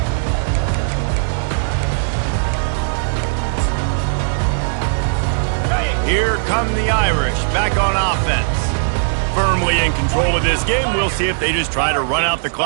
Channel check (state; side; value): silent; left; 65 dB below the other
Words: Here come the Irish, back on offense. Firmly in control of this game. We'll see if they just try to run out the